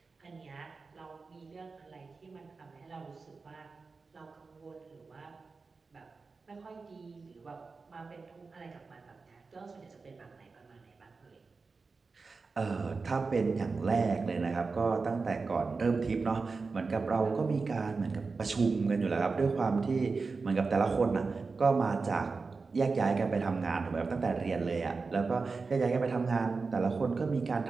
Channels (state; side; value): quieter; left; 4.3 dB